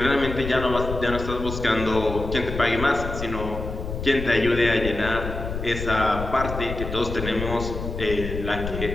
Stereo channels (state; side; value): noise; left; rumble, 6 dB below the sound